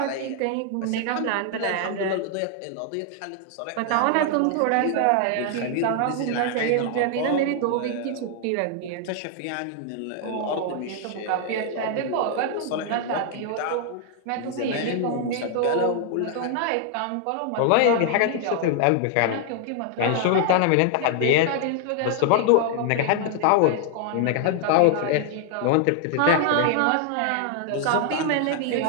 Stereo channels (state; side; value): different; both; correlation 0.00